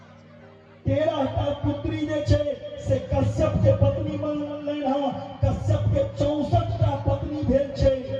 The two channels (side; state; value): both; identical; correlation 1.00